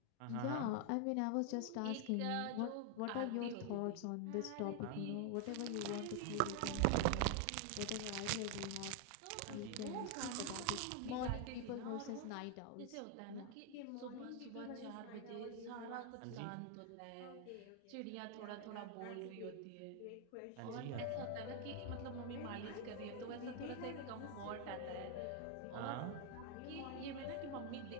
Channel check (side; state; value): both; different; correlation 0.01